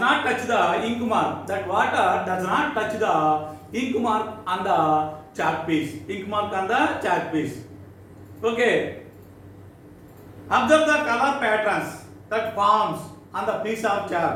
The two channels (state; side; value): identical; both; correlation 1.00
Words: touch the ink mark. That water does not touch the ink mark on the chalk piece. Okay. Observe the color patterns that forms on the piece of